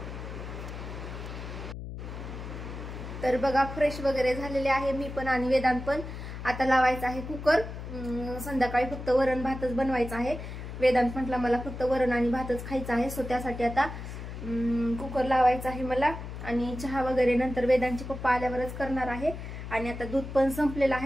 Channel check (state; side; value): noise; left; hum, 9 dB below the sound